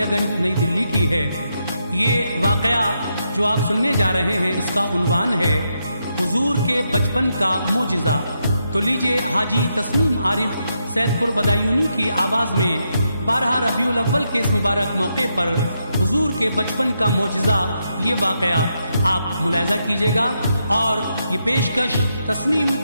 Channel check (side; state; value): both; inverted; correlation -0.82